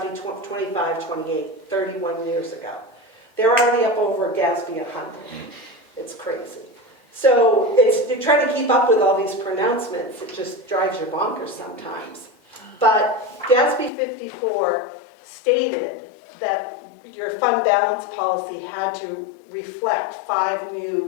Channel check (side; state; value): right; drops out; at 13.9 s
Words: 25, 28, 31 years ago. They're already up over GASB 100. It's crazy. So you're trying to keep up with all these pronouncements. It just drives you bonkers sometimes. But GASB 54 stated that your fund balance policy had to reflect 5